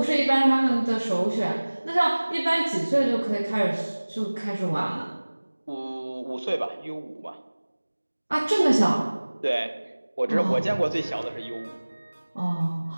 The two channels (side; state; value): both; inverted; correlation -1.00